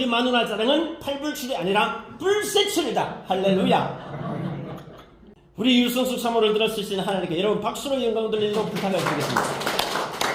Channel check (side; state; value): both; identical; correlation 1.00